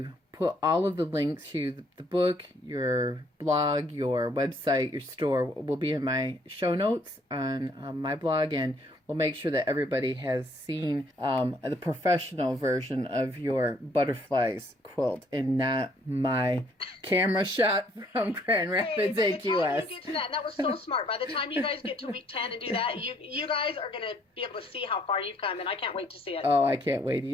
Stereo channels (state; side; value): normal; both; correlation 0.65